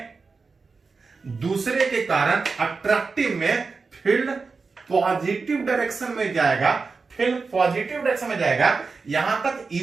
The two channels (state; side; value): quieter; left; 4.5 dB